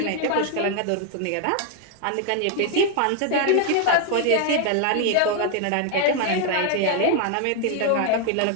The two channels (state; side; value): different; both; correlation 0.00